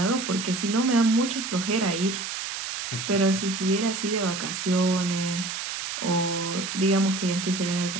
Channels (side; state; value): right; noise; hiss, 5 dB below the sound